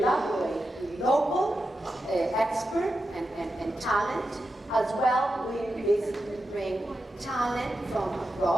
with local experts and talent, as well. We basically bring talent from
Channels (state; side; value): normal; both; correlation 0.89